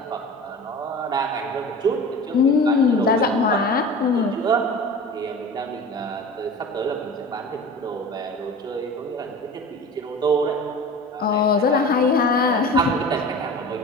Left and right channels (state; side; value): normal; both; correlation 0.36